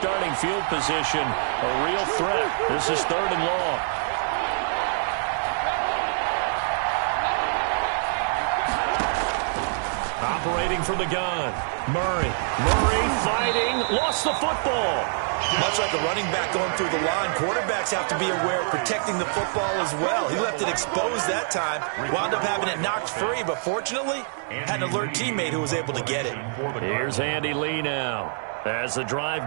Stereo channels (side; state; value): left; silent; 62 dB below the other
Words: field position, a real threat. This is 3rd and long. Operating from the gun. Murray fighting, lost the football. Much like a running back going through the line, quarterbacks have to be aware of protecting the football as well. He left it exposed that time, wound up having it knocked free, but fortunately, had an alert teammate who was able to get it. Here's Andy Lee now as the